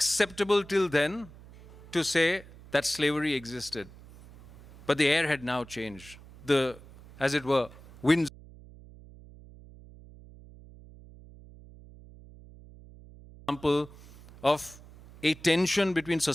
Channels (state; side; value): noise; right; hum, 20 dB below the sound